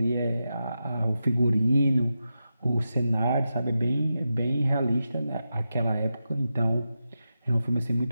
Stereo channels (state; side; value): inverted; both; correlation -0.89